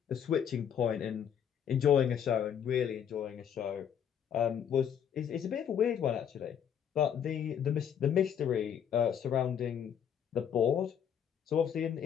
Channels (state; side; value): quieter; right; 8.6 dB